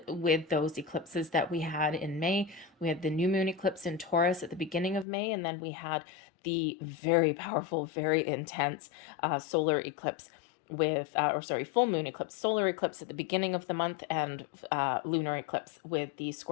with those eclipses that we had in May. We had the new moon eclipse in Taurus at the beginning of May, and then we had the very powerful, very intense solar eclipse with, full moon eclipse, solar eclipse at the beginning of the month, and lunar eclipse with the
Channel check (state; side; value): drops out; right; at 5.1 s